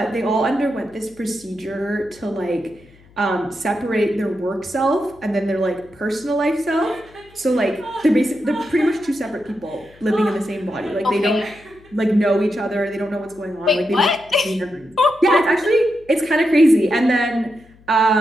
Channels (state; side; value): noise; left; hum, 27 dB below the sound